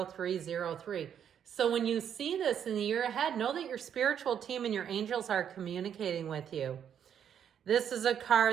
So when you see this in the year ahead, know that your spiritual team and your angels are communicating with you. This is a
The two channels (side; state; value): left; quieter; 8.7 dB